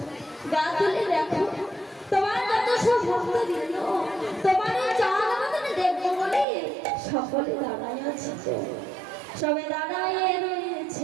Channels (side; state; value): left; drops out; at 6.5 s